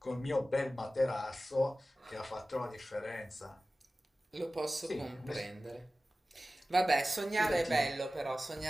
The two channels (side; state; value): both; normal; correlation 0.96